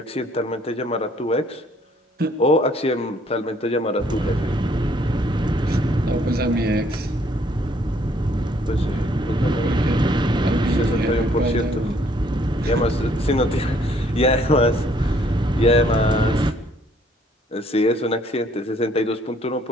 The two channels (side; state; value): both; normal; correlation 0.64